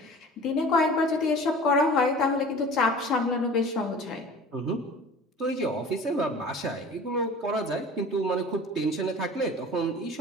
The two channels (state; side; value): normal; both; correlation 0.42